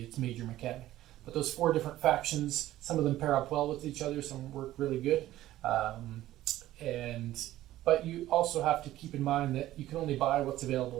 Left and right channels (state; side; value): quieter; left; 14.6 dB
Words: its major mechanic. But those 4 different factions, some of them pair up well with each other, some work really good. But you also have to keep in mind that you can only buy what's available